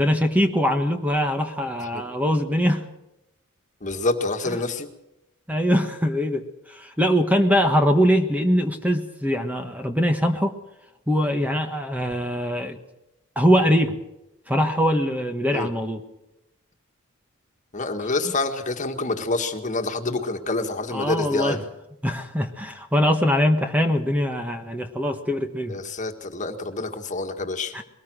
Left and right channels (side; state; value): both; normal; correlation 0.71